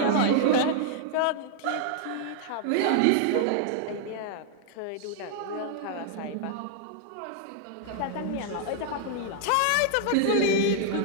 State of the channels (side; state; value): both; different; correlation 0.00